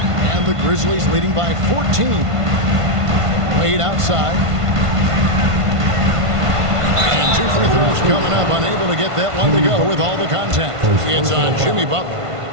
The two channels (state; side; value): late; left; 1.5 ms